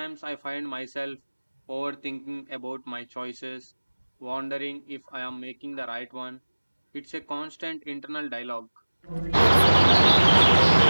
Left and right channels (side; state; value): both; inverted; correlation -1.00